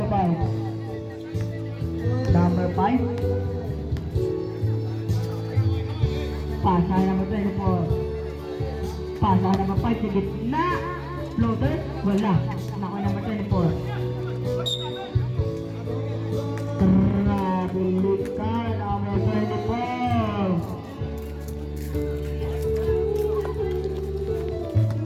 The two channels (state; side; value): identical; both; correlation 1.00